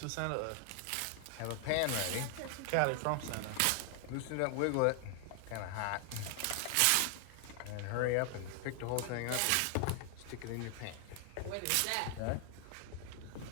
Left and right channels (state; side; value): different; both; correlation 0.00